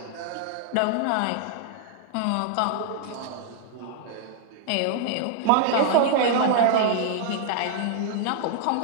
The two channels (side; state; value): both; different; correlation 0.00